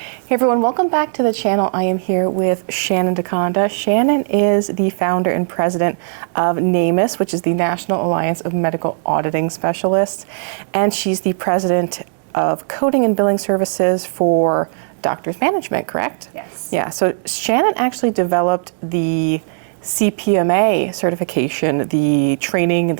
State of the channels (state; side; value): silent; left; digital silence